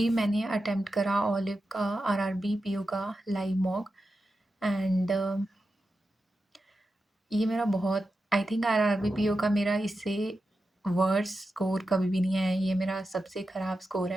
मैंने अटेम्प्ट करा ओलिव का आरआरबी पीओ का लाइव मॉक एंड ये मेरा बहुत आई थिंक आरआरबी पीओ का मेरा इससे वर्स स्कोर कभी भी नहीं आया। ये मेरा सबसे ख़राब स्कोर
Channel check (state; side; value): normal; both; correlation 0.90